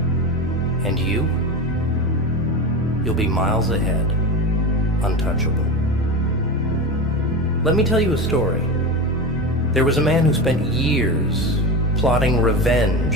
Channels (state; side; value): normal; both; correlation 0.23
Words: And you'll be miles ahead, untouchable. Let me tell you a story. There was a man who spent years plotting